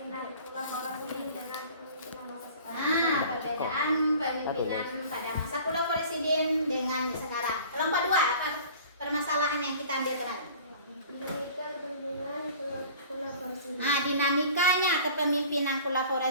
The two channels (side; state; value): both; inverted; correlation -0.45